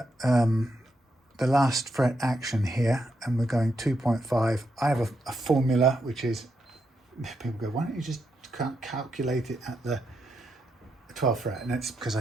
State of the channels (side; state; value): both; normal; correlation 0.82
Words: the last fret action here, and we're going 2.5, I have a formula which is, people go, why don't you just calculate it at the 12th fret? And it's because